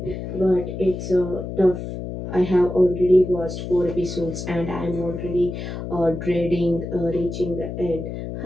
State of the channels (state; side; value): noise; left; hum, 7 dB below the sound